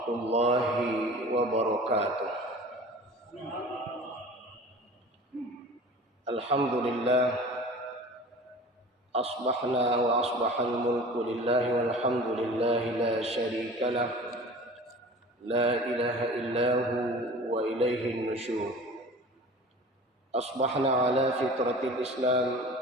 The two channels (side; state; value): both; normal; correlation 0.40